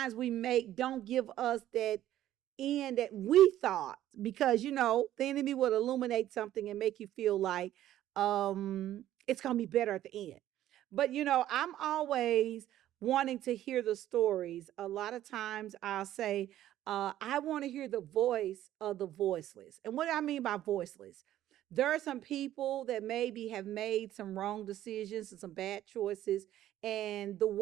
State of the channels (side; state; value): left; quieter; 12.9 dB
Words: we make don't give us that end that we thought because the enemy would illuminate something and make you feel like it's gonna be better at the end. But I'm always wanting to hear the stories. A lot of times I'll say, I want to hear the voice of the voiceless. And what do I mean by voiceless? There are some people that maybe have made some wrong decisions and some bad choices, and the